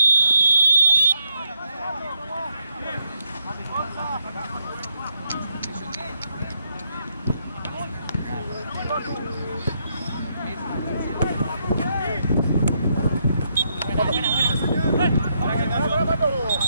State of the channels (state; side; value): inverted; both; correlation -0.79